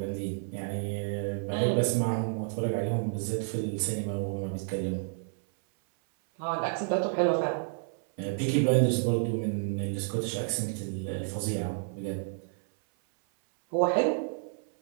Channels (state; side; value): silent; left; 58 dB below the other